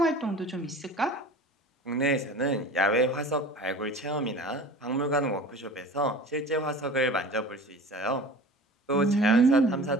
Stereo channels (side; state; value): both; normal; correlation 0.39